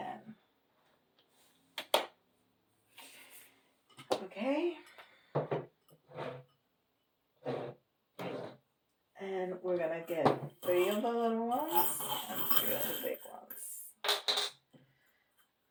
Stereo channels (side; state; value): both; identical; correlation 1.00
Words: Okay. And we're gonna get 3 of the little ones and 3 of the big ones.